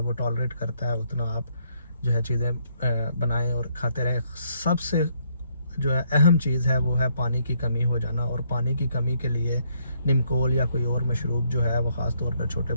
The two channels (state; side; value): inverted; both; correlation -0.70